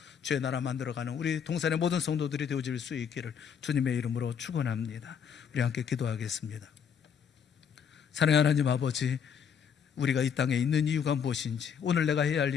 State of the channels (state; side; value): quieter; right; 7.4 dB